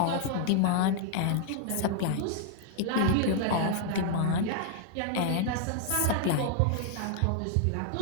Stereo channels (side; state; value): both; different; correlation 0.00